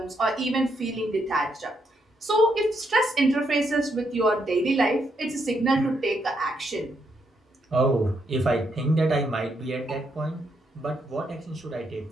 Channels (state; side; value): normal; both; correlation 0.78